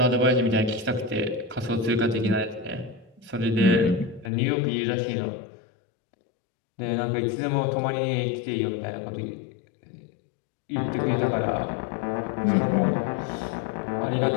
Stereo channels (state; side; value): drops out; right; at 4.3 s